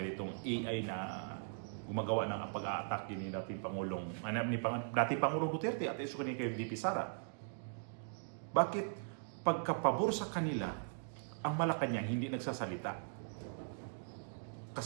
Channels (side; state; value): left; silent; digital silence